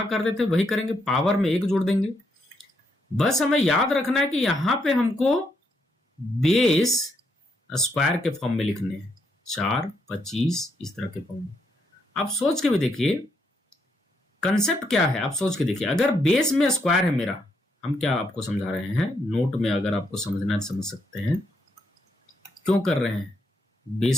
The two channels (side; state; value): both; normal; correlation 0.77